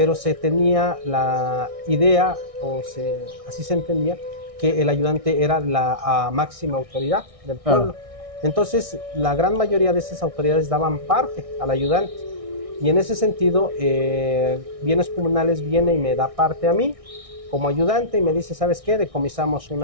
se tenía la idea, así se entendía, que el ayudante era la máxima autoridad del pueblo. Entonces, la gran mayoría de esas autoridades daban parte al ayudante. Y en ese sentido, Bienes Comunales viene y me da parte a mí como ayudante y me dice, ¿sabes qué? Decomisamos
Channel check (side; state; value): left; late; 1.6 ms